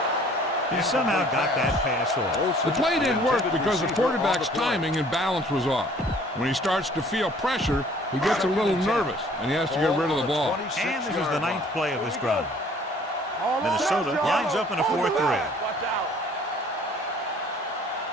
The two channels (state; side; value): normal; both; correlation 0.55